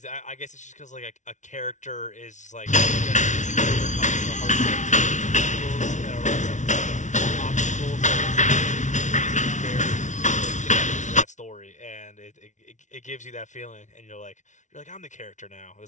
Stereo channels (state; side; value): late; right; 0.36 ms